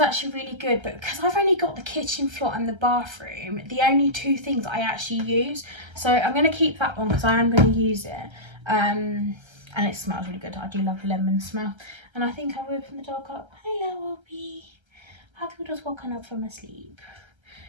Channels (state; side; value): late; left; 1.3 ms